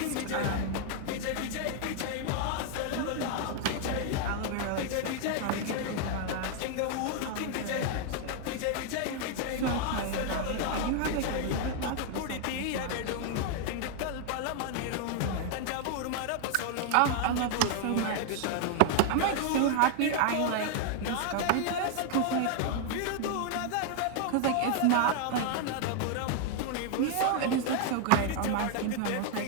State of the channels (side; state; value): both; different; correlation 0.00